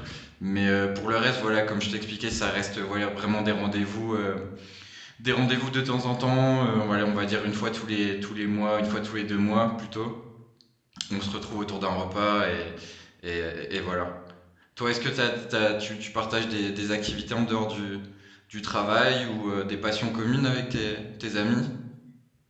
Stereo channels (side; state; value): both; identical; correlation 1.00